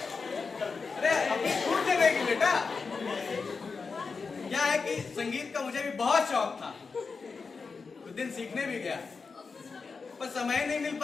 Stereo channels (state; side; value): quieter; right; 4.8 dB